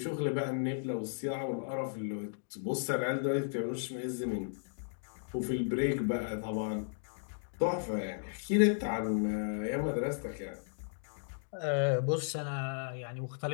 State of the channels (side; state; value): right; silent; digital silence